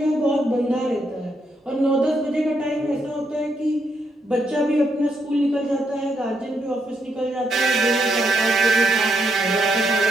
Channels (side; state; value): both; normal; correlation 0.78